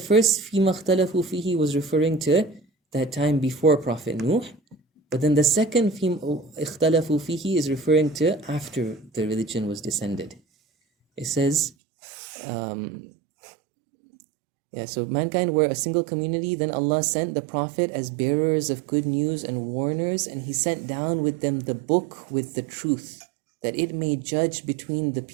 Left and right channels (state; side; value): drops out; left; at 11.7 s